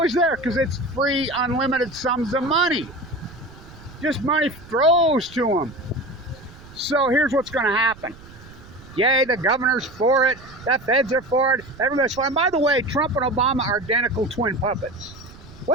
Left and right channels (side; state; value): right; noise; rumble, 20 dB below the sound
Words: there because it's free, unlimited sums of money. Just money throws to them. So here's what's going to happen. Yay, the governor's for it. The feds are for it. Everybody's for it. And by the way, Trump and Obama are identical twin puppets.